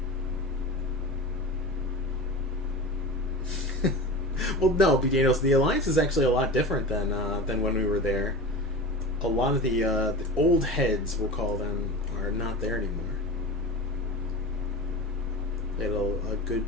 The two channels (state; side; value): normal; both; correlation 0.29